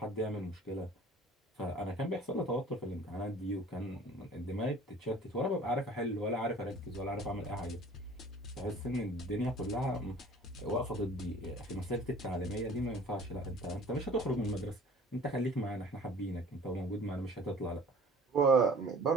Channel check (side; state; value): both; normal; correlation 0.48